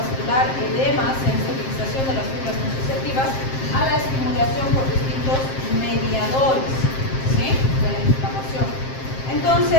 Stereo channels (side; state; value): right; late; 7.6 ms